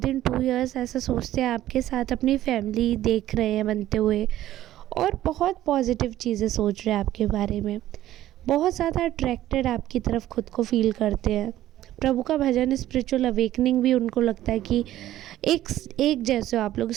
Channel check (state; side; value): quieter; left; 13.7 dB